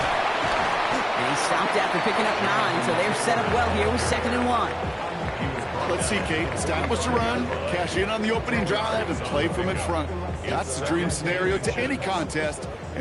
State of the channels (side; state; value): both; identical; correlation 1.00